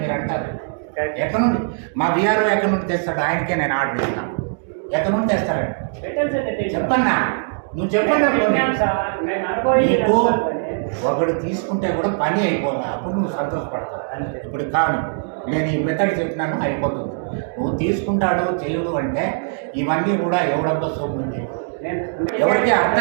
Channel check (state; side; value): silent; left; digital silence